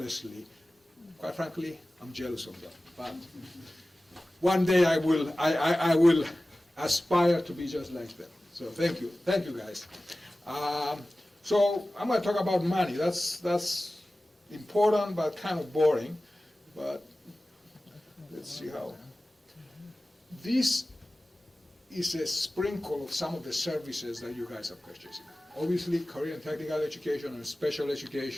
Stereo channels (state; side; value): normal; both; correlation 0.96